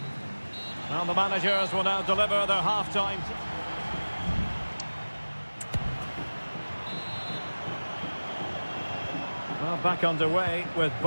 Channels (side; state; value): both; inverted; correlation -1.00